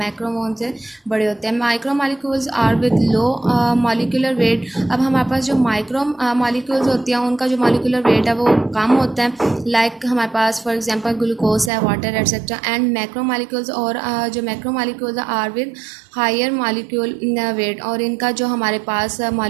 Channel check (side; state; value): left; drops out; at 11.7 s